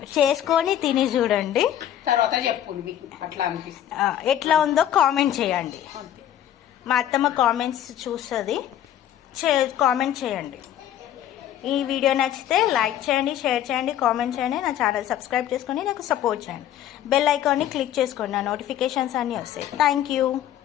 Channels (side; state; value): right; quieter; 11.2 dB